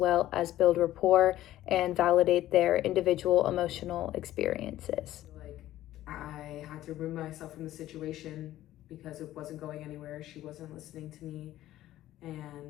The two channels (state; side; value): quieter; right; 14.2 dB